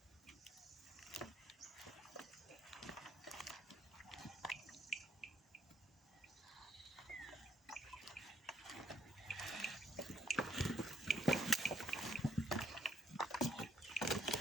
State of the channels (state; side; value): normal; both; correlation 0.70